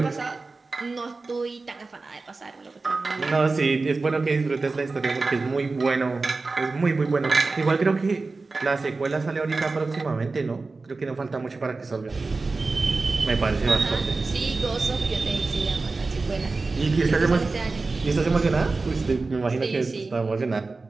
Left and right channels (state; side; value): quieter; left; 3.8 dB